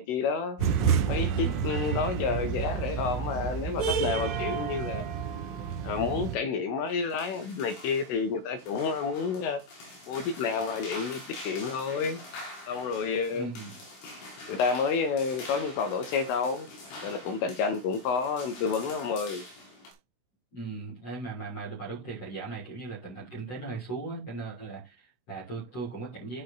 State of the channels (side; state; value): right; late; 16 ms